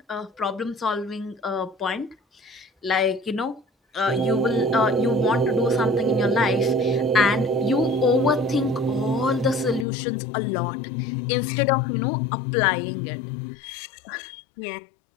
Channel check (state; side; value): drops out; right; at 9.9 s